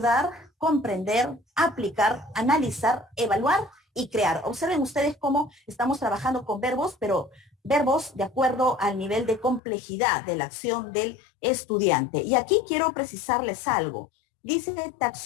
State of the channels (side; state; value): right; drops out; at 9.6 s